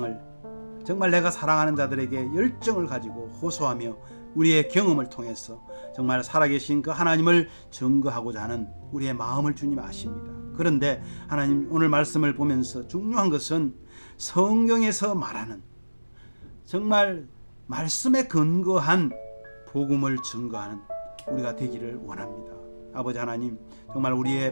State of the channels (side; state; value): both; inverted; correlation -1.00